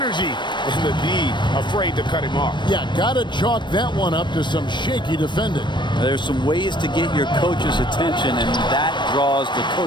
and the D afraid to cut him off. Yeah, gotta chalk that one up to some shaky defending. There's some ways to get your coach's attention, and that draws the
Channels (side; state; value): right; late; 0.22 ms